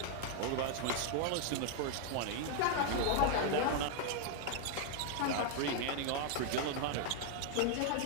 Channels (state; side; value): different; both; correlation 0.00